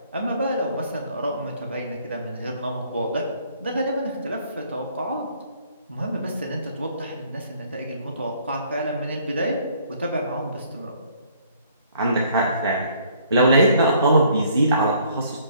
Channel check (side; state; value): both; inverted; correlation -0.61